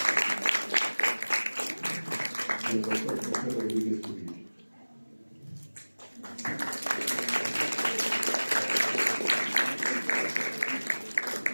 y el doctor José Rodríguez Uribe.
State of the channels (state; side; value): inverted; both; correlation -1.00